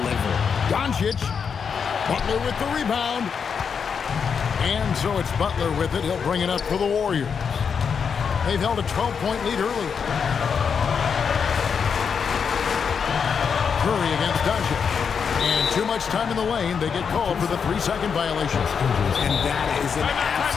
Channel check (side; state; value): right; quieter; 6.4 dB